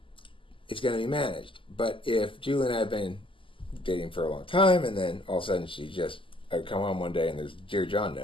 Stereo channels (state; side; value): late; right; 0.25 ms